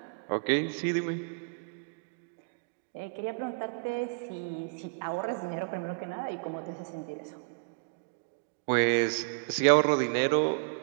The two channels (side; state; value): left; quieter; 38.6 dB